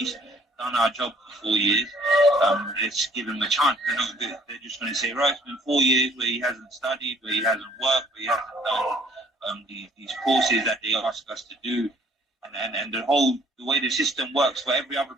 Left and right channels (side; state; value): both; normal; correlation 0.60